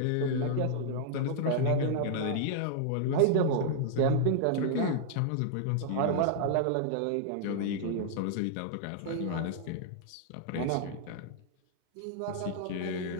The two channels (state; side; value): different; both; correlation -0.01